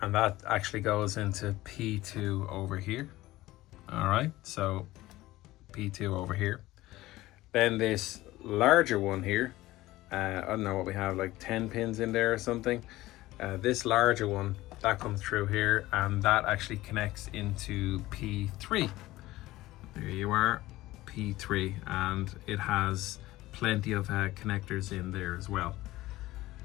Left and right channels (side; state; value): right; quieter; 17.3 dB